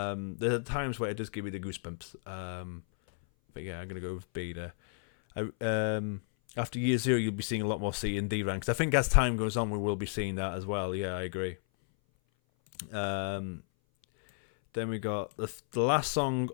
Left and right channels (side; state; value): right; silent; 56 dB below the other